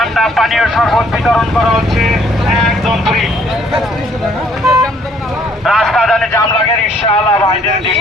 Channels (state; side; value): normal; both; correlation 0.63